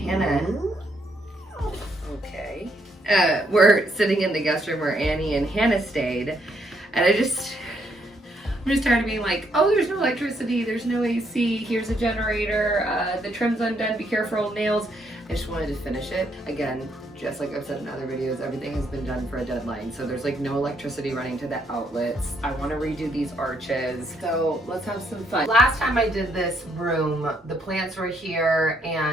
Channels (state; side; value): normal; both; correlation 0.73